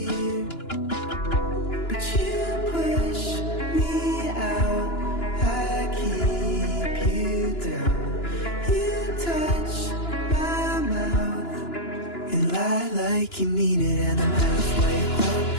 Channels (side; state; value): right; late; 2.9 ms